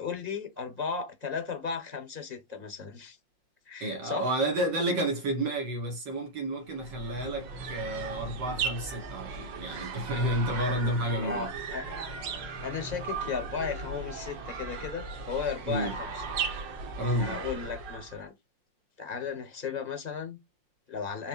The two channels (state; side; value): late; left; 5.6 ms